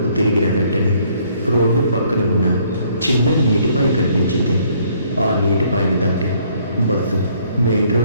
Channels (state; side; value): inverted; both; correlation -0.64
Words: తిరిగిన వెంటనే రోడ్డు పక్కన ఉన్న చిన్న నీటిపాయ కనిపించింది. ఆ నీటిపాయను దాటి బస్సు మెయిన్